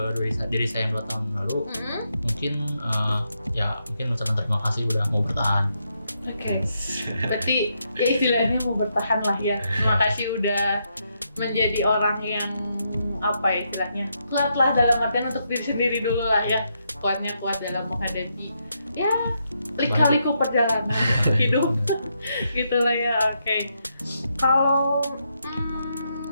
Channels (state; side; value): inverted; both; correlation -0.80